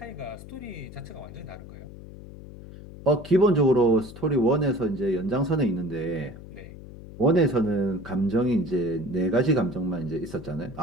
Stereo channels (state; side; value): noise; left; hum, 15 dB below the sound